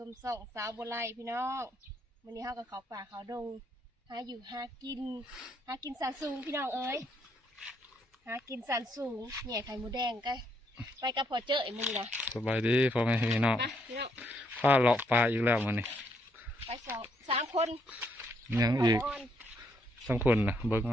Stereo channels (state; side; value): normal; both; correlation 0.73